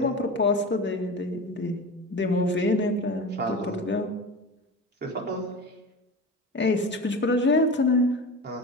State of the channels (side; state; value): both; normal; correlation 0.29